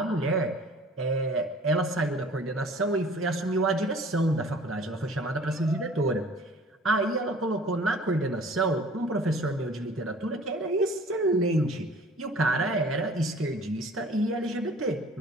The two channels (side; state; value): both; normal; correlation 0.49